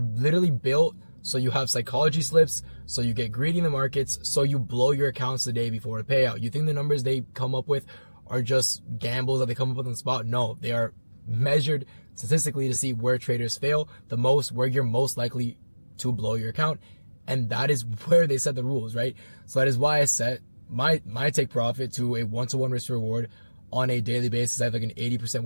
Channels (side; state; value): both; inverted; correlation -1.00